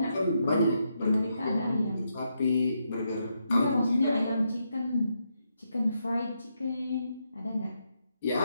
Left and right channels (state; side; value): inverted; both; correlation -0.81